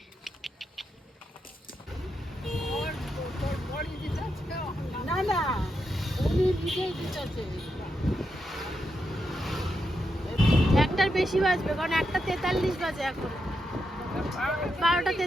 না না, উনি নিজেই দিতেছে। একটার বেশি বাজবে, কারণ 1:43 বাজে এখন,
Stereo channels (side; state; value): both; normal; correlation 0.84